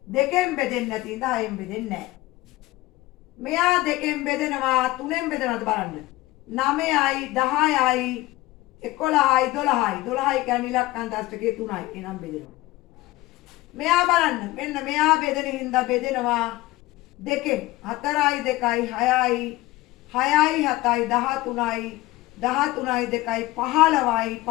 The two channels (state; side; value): quieter; right; 18.7 dB